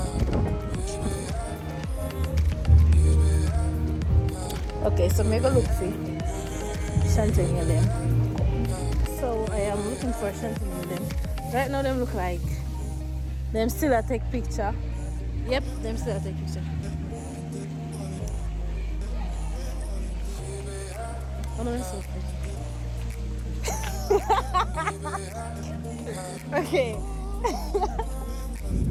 Okay, so make a look see Shanteen and them. So I am looking for Shanteen and them. Right now them look like them still a take picture. Yep, them still a take picture. Oh no, it's okay. Okay.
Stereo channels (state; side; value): identical; both; correlation 1.00